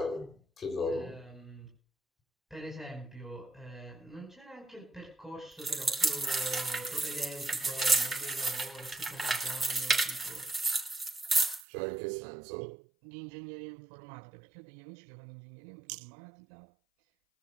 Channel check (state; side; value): drops out; left; at 11.6 s